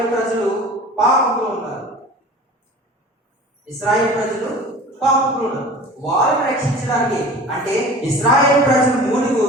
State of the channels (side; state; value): both; normal; correlation 0.40